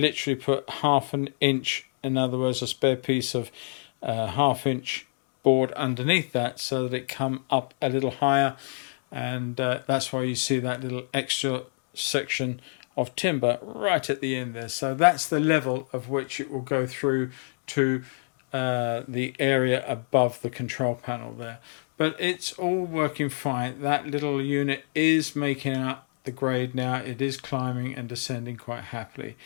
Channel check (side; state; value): right; silent; digital silence